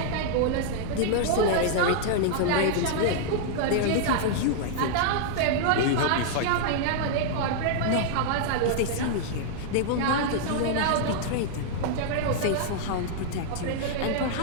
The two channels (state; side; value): different; both; correlation -0.01